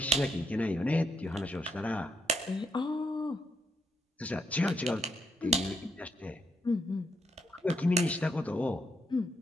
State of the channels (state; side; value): normal; both; correlation 0.78